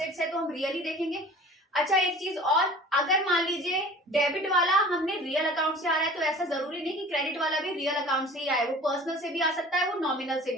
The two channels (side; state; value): both; normal; correlation 0.43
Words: है तो हम रियल ही देखेंगे। अच्छा एक चीज और, अगर मान लीजिए डेबिट वाला हमने रियल अकाउंट से आ रहा है तो ऐसा जरूरी नहीं कि क्रेडिट वाला भी रियल अकाउंट से ही आए, वो पर्सनल से भी आ सकता है, वो नॉमिनल से